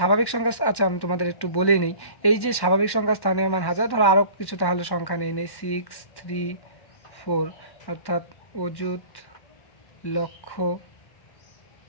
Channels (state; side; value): late; right; 1.1 ms